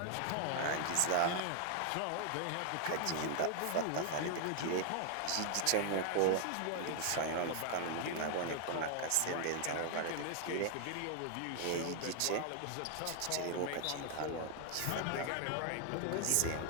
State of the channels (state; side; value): different; both; correlation 0.00